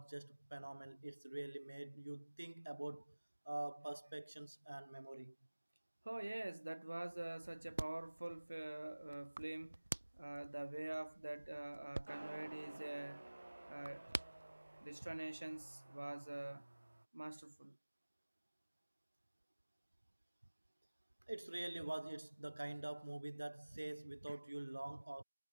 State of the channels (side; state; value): both; inverted; correlation -1.00